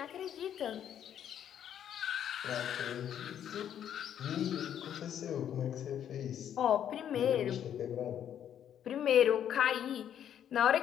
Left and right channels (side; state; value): right; quieter; 9.7 dB